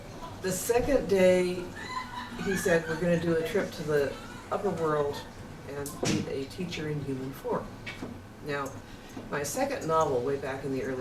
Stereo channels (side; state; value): both; identical; correlation 1.00